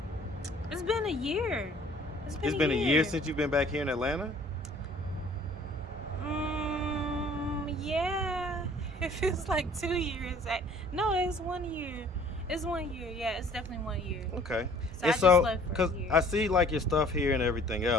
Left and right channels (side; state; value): both; normal; correlation 0.53